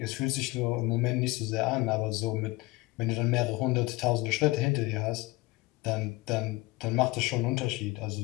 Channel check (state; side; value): quieter; right; 21.6 dB